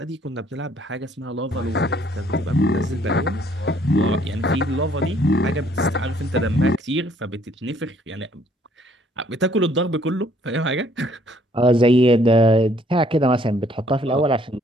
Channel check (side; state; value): both; normal; correlation 0.64